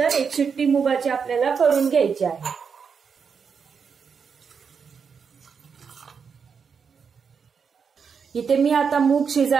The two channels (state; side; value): quieter; left; 6.1 dB